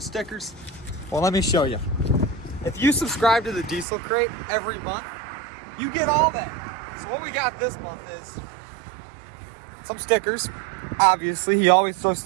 stickers? Well, let me show you. If you subscribe to the Diesel Crate every month, you get all that. So what we got this month is some stickers. Obviously, he always throws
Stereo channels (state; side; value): drops out; left; at 3.9 s